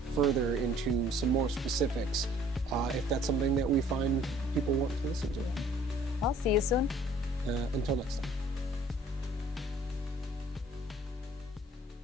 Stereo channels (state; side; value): normal; both; correlation 0.56